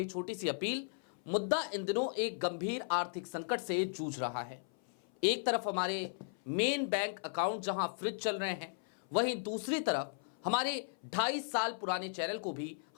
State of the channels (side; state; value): right; silent; 54 dB below the other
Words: छोटी सी अपील। मुद्दा इन दिनों एक गंभीर आर्थिक संकट से जूझ रहा है। एक तरफ हमारे मेन बैंक अकाउंट जहां फ्रिज चल रहे हैं, वहीं दूसरी तरफ हमारे 2.5 साल पुराने चैनल को भी